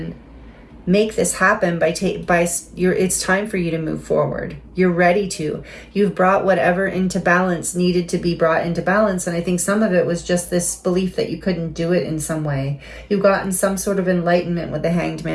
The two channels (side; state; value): both; identical; correlation 1.00